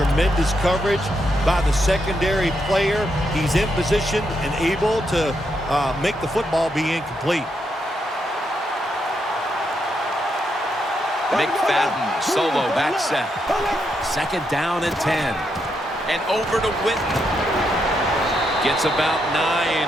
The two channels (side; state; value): both; normal; correlation 0.80